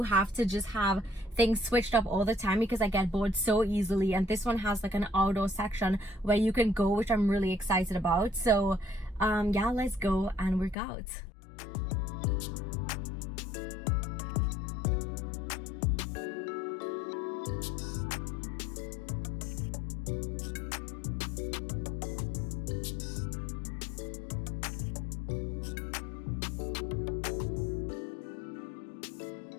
have to just have things switched up all the time because I get bored so easily. And this one has like an outdoor section where you can go, which I'm really excited about. So yeah, let's go and work out.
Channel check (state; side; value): drops out; right; at 10.8 s